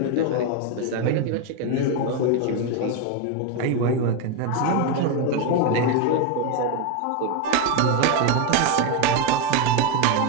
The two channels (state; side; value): different; both; correlation 0.02